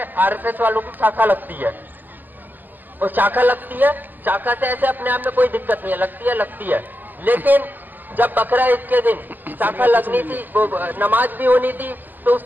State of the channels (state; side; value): late; left; 0.087 ms